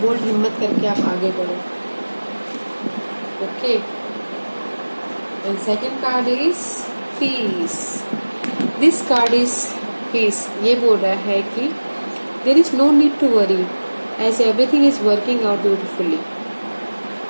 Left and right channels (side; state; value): both; inverted; correlation -1.00